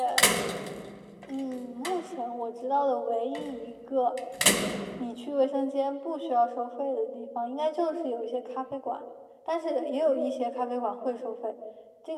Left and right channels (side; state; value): both; identical; correlation 1.00